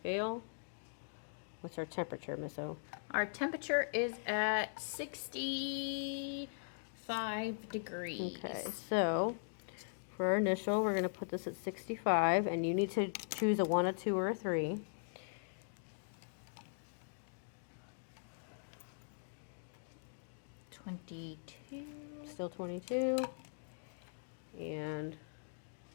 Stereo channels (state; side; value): silent; right; digital silence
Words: What's our temperature, Miss O? Our temperature is at 65 degrees. Okay, so for our initial, we're going to put this at 65, and you need to choose a 1, a 2, or a 3. Still 22. And